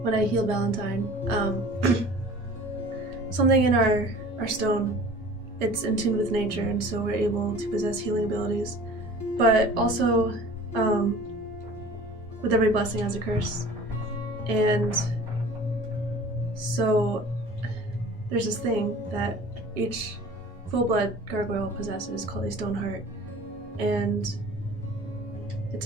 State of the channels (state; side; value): normal; both; correlation 0.44